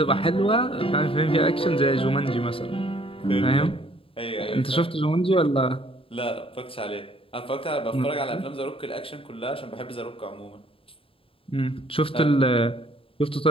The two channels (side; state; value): right; late; 0.27 ms